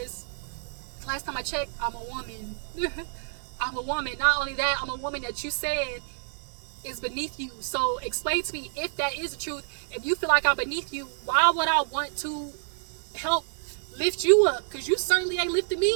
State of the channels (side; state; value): left; silent; digital silence